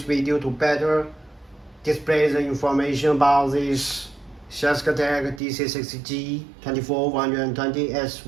video to better display the information about this SHYSKY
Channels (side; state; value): left; drops out; at 5.4 s